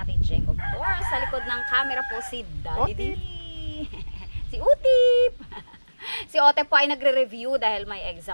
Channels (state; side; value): inverted; both; correlation -1.00